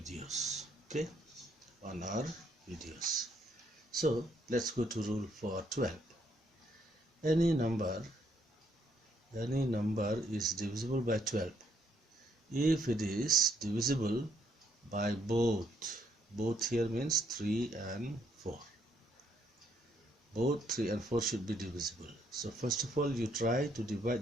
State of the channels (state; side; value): normal; both; correlation 0.71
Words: Okay, on our videos. So let's go to rule for 12. Any number is divisible by 12 if it is divisible by both here means 3 and 4. Both 3 and 4 should be divisible. So first of all, you try to